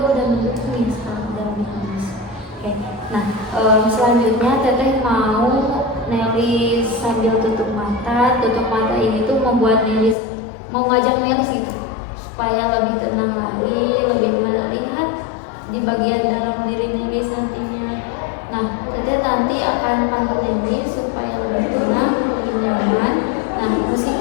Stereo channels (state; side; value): drops out; right; at 10.2 s